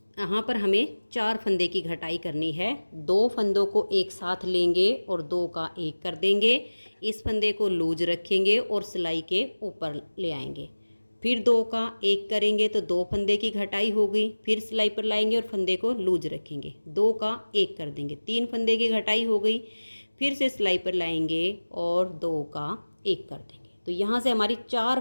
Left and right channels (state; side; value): inverted; both; correlation -1.00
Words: यहाँ पर हमें 4 फंदे की घटाई करनी है। 2 फंदों को एक साथ लेंगे और 2 का 1 कर देंगे। इस फंदे को लूज रखेंगे और सिलाई के ऊपर ले आएंगे। फिर 2 का 1 करेंगे तो 2 फंदे की घटाई हो गई। फिर सिलाई पर लाएंगे और फंदे को लूज रखेंगे, 2 का 1 कर देंगे, 3 फंदे की घटाई हो गई। फिर से सिलाई पर लाएंगे और 2 का 1 कर देंगे। तो यहाँ से हमारी 4